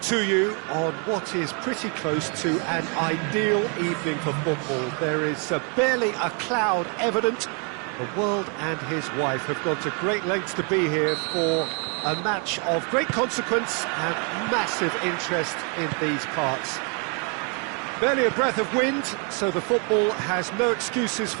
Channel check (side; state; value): left; quieter; 37.3 dB